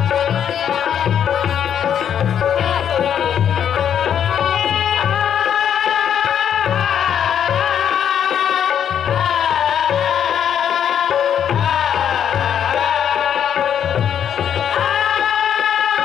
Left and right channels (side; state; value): right; quieter; 8.9 dB